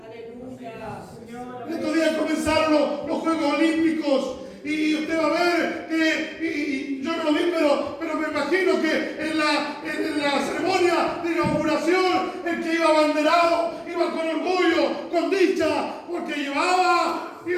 Aleluya, Señor. Estos días comenzaron los Juegos Olímpicos y usted va a ver y yo no lo vi, pero me imagino que en la ceremonia de inauguración el que iba abanderado iba con orgullo, con dicha, porque llevaba y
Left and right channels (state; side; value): identical; both; correlation 1.00